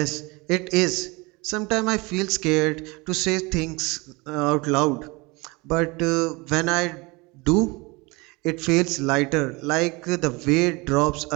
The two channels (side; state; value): left; quieter; 25.5 dB